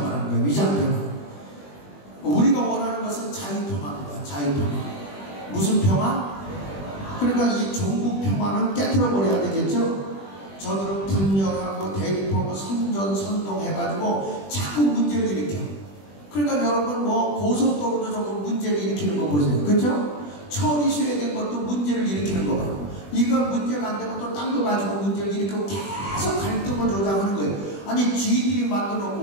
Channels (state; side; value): late; right; 20 ms